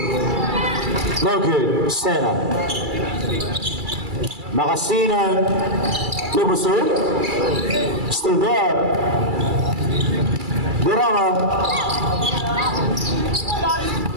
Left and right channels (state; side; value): late; left; 2.3 ms